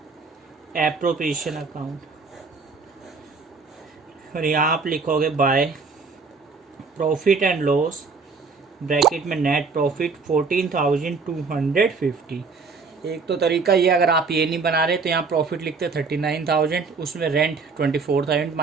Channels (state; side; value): quieter; left; 4.6 dB